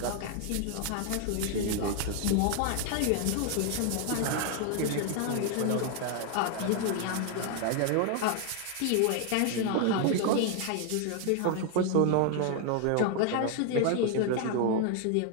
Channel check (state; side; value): different; both; correlation 0.00